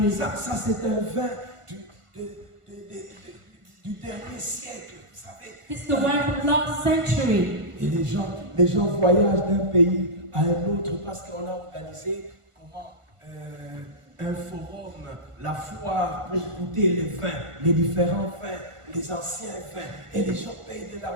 Ça c'est un vin du dernier siècle, vous savez. This is the wine from last century. Et les gens voyagent d'un pays à un autre parce qu'on a organisé un forum, la foire pour goûter les vins, les différents vins, les anciens vins. Et les gens payent de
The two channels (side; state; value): left; late; 1.4 ms